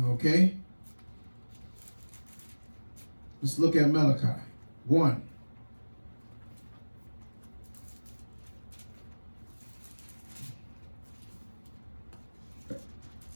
Okay? Let's look at Malachi. 1.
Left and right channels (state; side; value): inverted; both; correlation -1.00